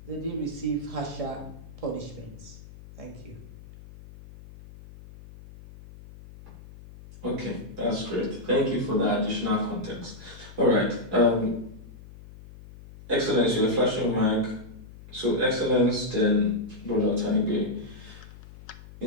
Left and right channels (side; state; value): left; noise; hum, 18 dB below the sound